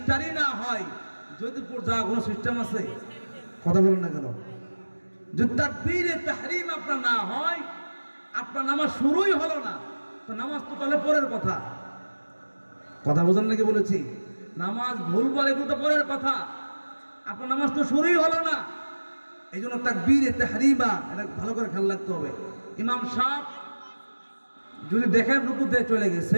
না হয় জয়দেবপুর যাওয়ার কোনো সিস্টেম আছে? কথা বলুন না কেন? যদি তাকবীরে তাহরিম আপনার না হয়, আপনার নামাজ শুরুই হলো না, তো নামাজ তো তাহলে পরের কথা। কথা বোঝেন নাকি বলেছি? নামাজ ভুল বলে কিন্তু পরের কথা, আপনার নামাজ তো শুরুই হলো না। এই জন্য তাকবীরে তাহরিমা এটা ভালো করে খেয়াল রাখতে হবে। ইমাম সাহেব যদি দেখেন রুকুতে চলে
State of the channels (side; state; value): both; inverted; correlation -1.00